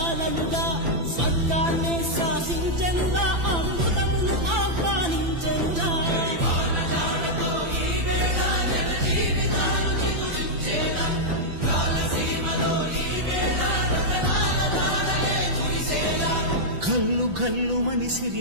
స్వర్గాన్ని శాసించెనురా అమృతమును ఆహ్వానించెనురా కల్లు కల్లు మని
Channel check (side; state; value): left; late; 5.9 ms